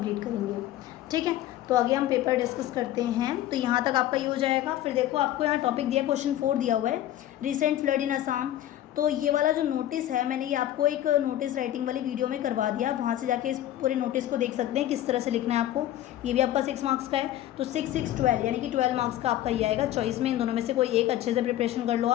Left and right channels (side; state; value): right; quieter; 13.0 dB